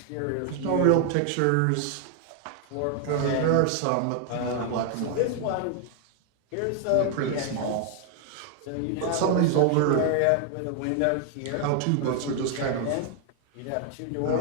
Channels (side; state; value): both; different; correlation 0.00